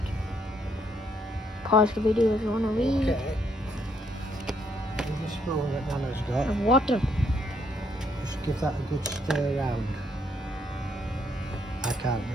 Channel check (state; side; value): normal; both; correlation 0.72